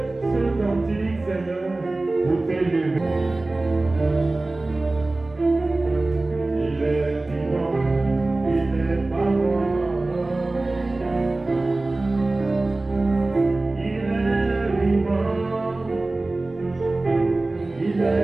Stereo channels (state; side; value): quieter; left; 3.0 dB